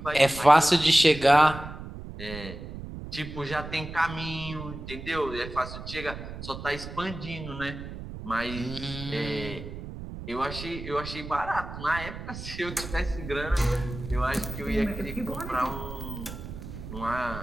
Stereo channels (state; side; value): noise; right; rumble, 10 dB below the sound